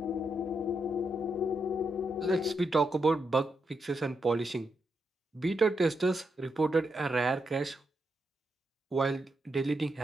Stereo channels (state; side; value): normal; both; correlation 0.83